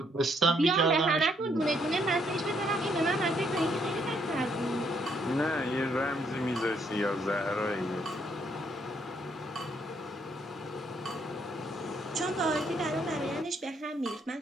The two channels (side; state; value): both; normal; correlation 0.71